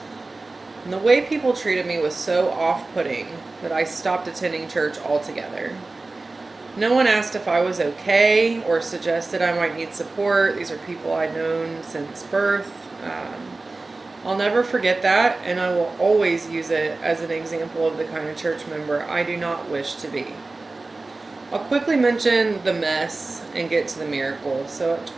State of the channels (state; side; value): quieter; left; 3.4 dB